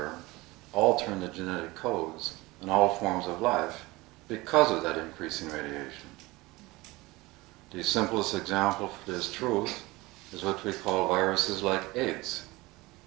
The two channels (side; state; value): left; quieter; 21.4 dB